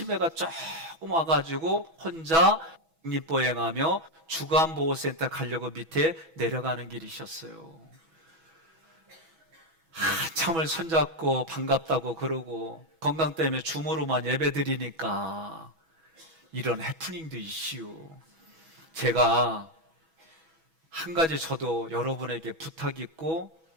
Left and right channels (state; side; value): late; left; 6.1 ms